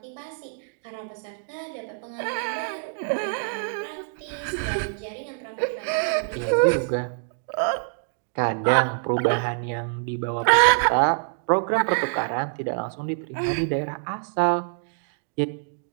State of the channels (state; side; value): silent; left; digital silence